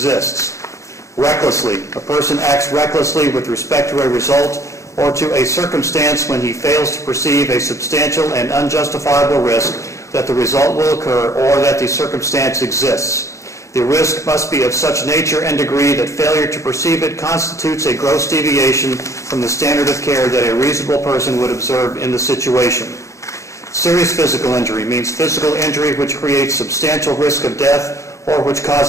Recklessly, a person acts recklessly with respect to a result or to a circumstance when he fails to perceive a substantial and unjustifiable risk that the result will occur or that the circumstance exists. The risk must be of such nature and degree that failure to perceive it constitutes a gross deviation from the standard of care that a reasonable person would observe in the situation. Serious physical injury means physical injury which creates substantial risk of death or which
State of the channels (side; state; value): right; late; 0.15 ms